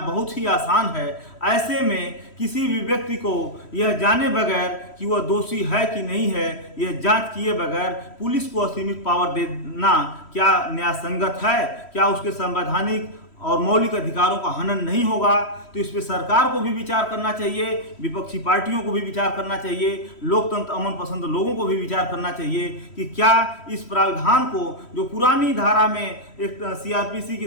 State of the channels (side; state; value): right; late; 3.1 ms